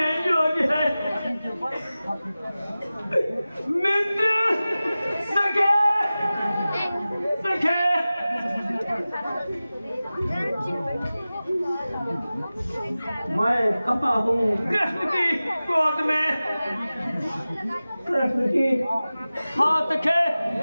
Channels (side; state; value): both; inverted; correlation -0.96